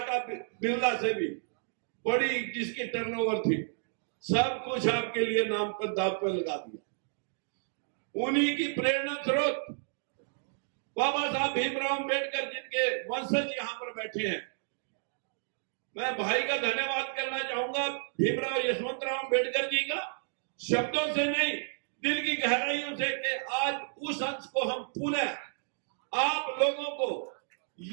बिरला से भी बड़ी, जिसकी टर्नओवर थी, सब कुछ आपके लिए नाम पर दाव पर लगा दिया। उन्हीं की प्रेरणा स्रोत बाबा साहब भीमराव अम्बेडकर, जिनके वंशज यहां पर बैठे हैं। मैं भाई का धन्यवाद करना चाहूंगा भीमराव यशवंतराव अम्बेडकर जी का, शब्दों से नहीं, दिल की गहराइयों से, कि आज उस अंश को हम पुनः आप लोगों को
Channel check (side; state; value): left; silent; digital silence